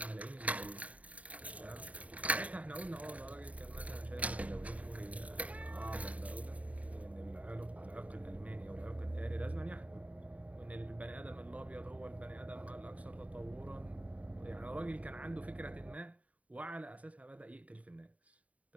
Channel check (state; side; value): late; left; 0.069 ms